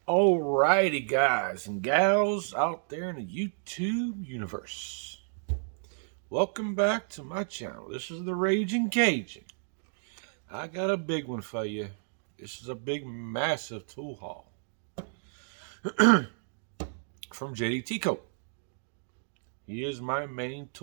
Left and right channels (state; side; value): silent; left; digital silence